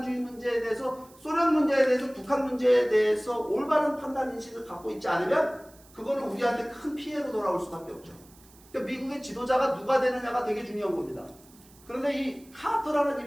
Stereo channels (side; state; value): right; noise; hiss, 26 dB below the sound